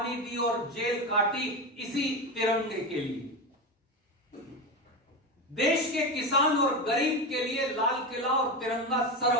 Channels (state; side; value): normal; both; correlation 0.19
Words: दी और जेल काटी इसी तिरंगे के लिए। देश के किसान और गरीब के लिए लाल किला और तिरंगा